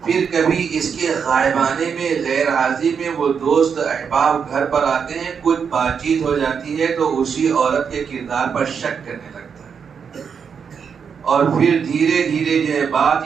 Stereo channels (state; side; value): quieter; left; 6.6 dB